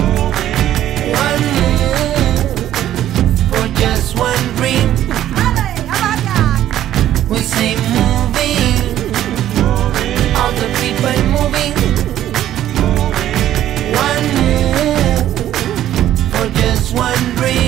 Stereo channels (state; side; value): quieter; left; 12.2 dB